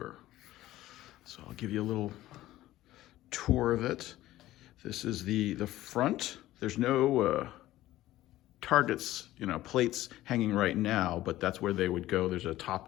So I'll give you a little tour of it. This is the front. There's no targets, plates hanging right now, but that's where they would go. There's a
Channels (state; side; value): quieter; right; 15.3 dB